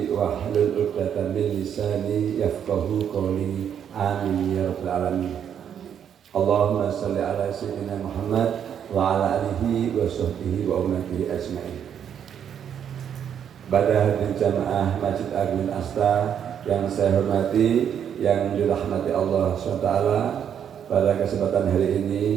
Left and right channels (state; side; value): quieter; left; 8.7 dB